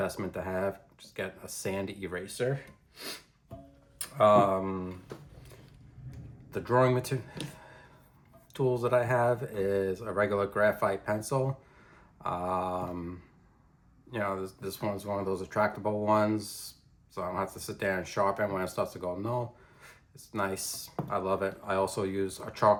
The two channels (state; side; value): identical; both; correlation 1.00